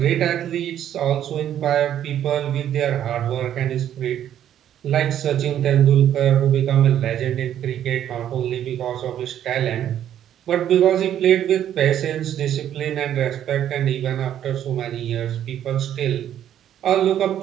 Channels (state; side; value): quieter; left; 10.7 dB